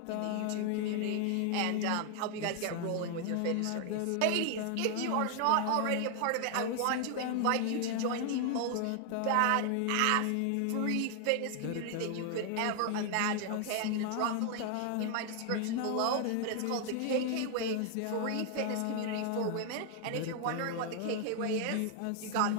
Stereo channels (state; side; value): different; both; correlation 0.00